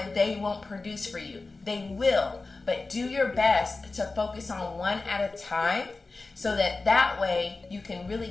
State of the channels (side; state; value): right; quieter; 3.6 dB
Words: they won't produce for you. They will, but do your best to focus on one at a time, so that way you can really